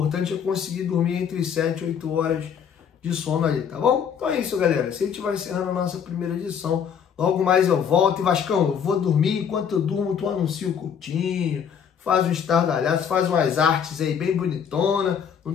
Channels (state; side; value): quieter; right; 7.6 dB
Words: é conseguir dormir entre 7 e 8 horas de sono ali, tá bom? Então é isso, galera. Se a gente vai encerrando a nossa primeira edição, logo mais eu volto. E Vascão, eu vou dormir. Enquanto eu durmo, tu anuncia o Coutinho, faz um estardalhaço, faz umas artes aí bem bonitona.